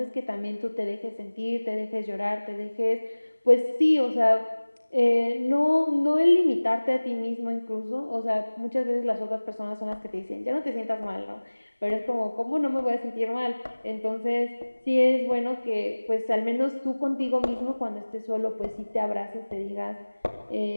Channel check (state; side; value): inverted; both; correlation -1.00